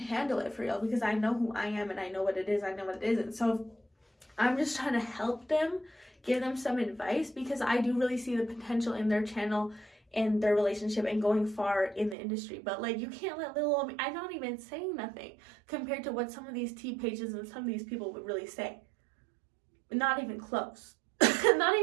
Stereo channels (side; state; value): left; drops out; at 12.2 s